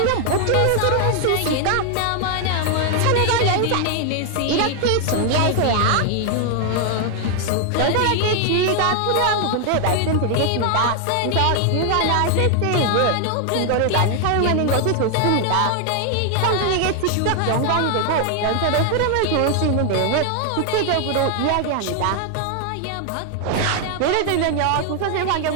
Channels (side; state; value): both; different; correlation 0.00